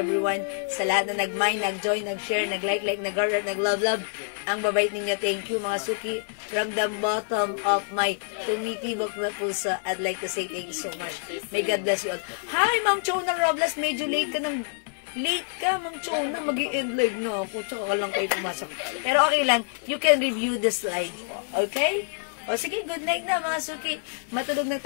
sa lahat na nag-mind, nag-join, nag-share, nag-like, nag-heart, nag-love. Ang babait ninyo. Thank you mga suki. From the bottom of my tumitibok na puso, I'd like to say thank you so much. May God bless you all. Hi, Ma'am Chona Robles. Medyo late ka ng... Late ka, Ma'am Chona. Mag-i-end live na ako. Tsaka ka lang kayo pumasok. Pero okay lang. You can review this live. Okay? O sige, good night na mga suki. Matulog na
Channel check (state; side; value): silent; right; 60 dB below the other